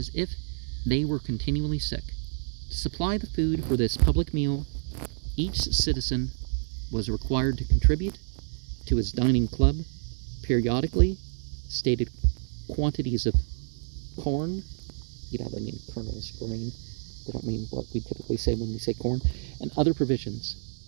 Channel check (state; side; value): silent; left; digital silence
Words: if they were continually sick. To supply the food for this public meal, each citizen was required to contribute to his dining club periodically stated quantities of corn. They mean kernels, grain. They don't mean what we typically say when we say corn, and other provisions.